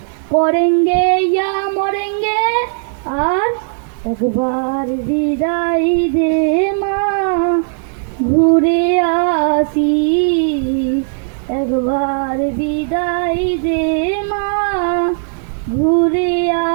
করেঙ্গে ইয়া মরেঙ্গে, আর একবার বিদায় দে মা, ঘুরে আসি, একবার বিদায় দে মা, ঘুরে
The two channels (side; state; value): left; silent; 69 dB below the other